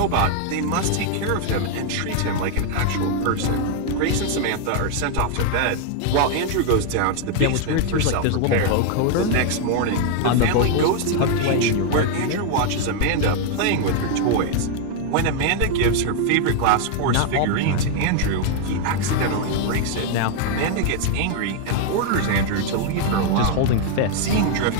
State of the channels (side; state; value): both; different; correlation 0.00